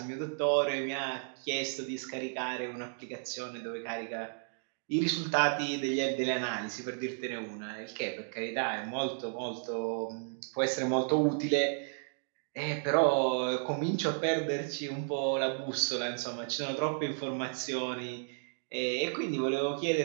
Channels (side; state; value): left; silent; digital silence